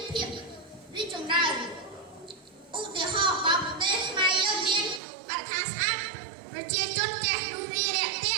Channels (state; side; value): drops out; left; at 5.0 s